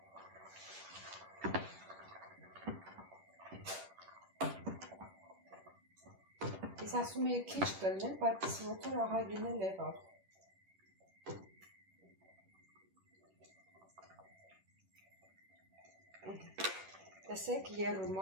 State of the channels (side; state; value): left; late; 10 ms